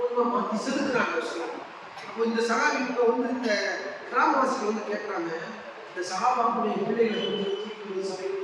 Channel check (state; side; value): identical; both; correlation 1.00